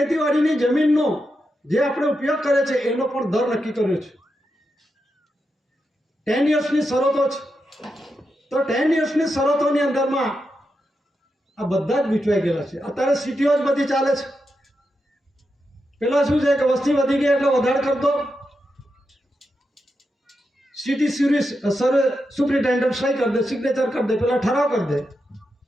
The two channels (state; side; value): normal; both; correlation 0.87